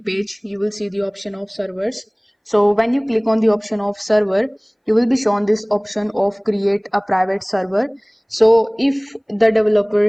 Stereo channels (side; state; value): both; identical; correlation 1.00